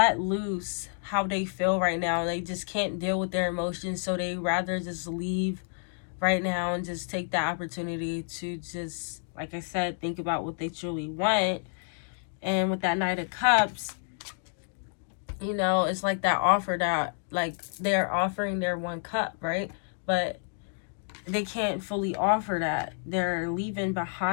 loose how they feel right now. They just can't deal with their emotions, so they rather just leave right now and just take the opportunity to just, like I said, think about what they truly want. And with that Knight of Cups, you know, it's like that offer that, like, they're offering their one cup, right? But they can't fully offer that. They're leaving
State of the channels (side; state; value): right; silent; digital silence